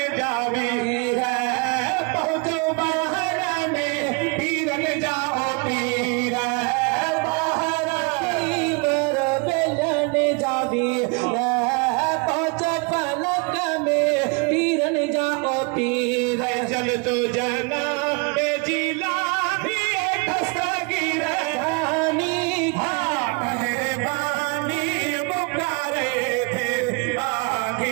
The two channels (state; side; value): quieter; left; 32.3 dB